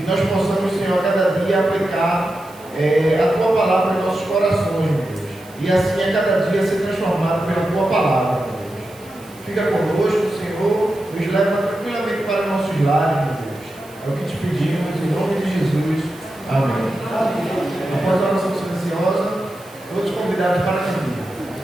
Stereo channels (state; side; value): noise; right; hiss, 24 dB below the sound